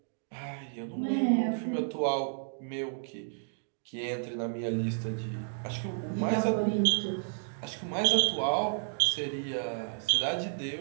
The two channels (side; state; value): left; silent; digital silence